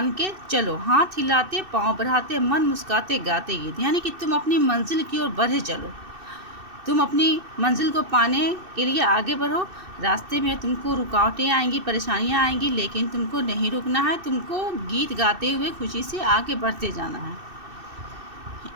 के चलो, हाथ हिलाते पाँव बढ़ाते मन मुस्काते गाते गीत। यानी कि तुम अपनी मंजिल की ओर बढ़े चलो, तुम अपनी मंजिल को पाने के लिए आगे बढ़ो। रास्ते में तुमको रुकावटें आएंगी, परेशानियां आएंगी, लेकिन तुमको नहीं रुकना है। तुमको गीत गाते हुए खुशी से आगे बढ़ते जाना है।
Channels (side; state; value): left; late; 2.6 ms